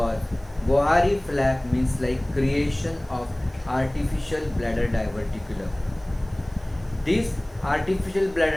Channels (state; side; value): noise; right; hiss, 30 dB below the sound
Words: Bohari flap means like creation of artificial bladder diverticulum. This artificial